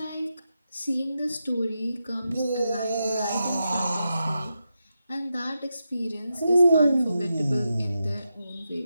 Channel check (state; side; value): inverted; both; correlation -0.87